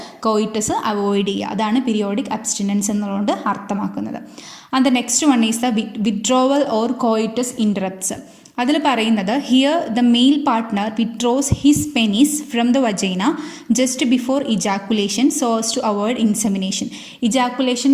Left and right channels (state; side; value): identical; both; correlation 1.00